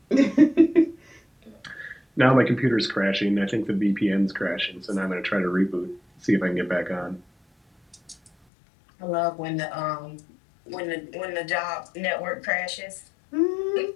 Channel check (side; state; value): right; drops out; at 8.3 s